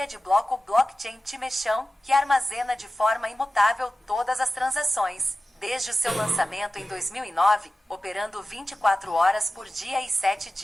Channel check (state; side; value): normal; both; correlation 0.94